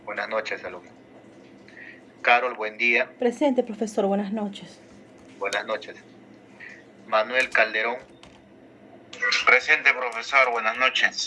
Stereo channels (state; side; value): identical; both; correlation 1.00